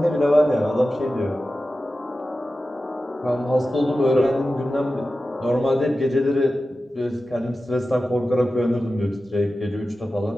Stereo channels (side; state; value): both; normal; correlation 0.93